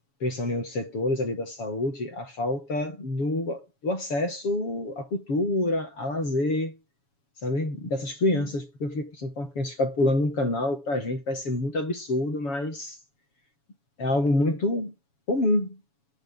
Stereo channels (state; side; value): late; right; 7.2 ms